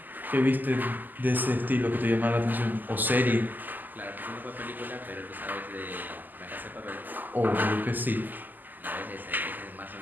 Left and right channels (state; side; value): late; left; 0.086 ms